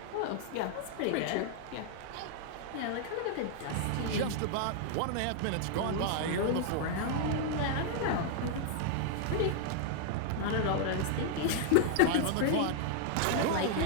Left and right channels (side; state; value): both; different; correlation 0.00